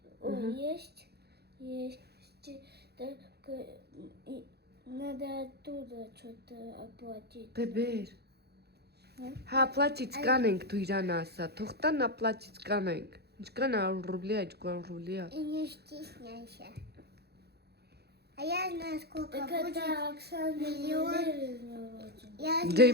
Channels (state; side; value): late; left; 0.47 ms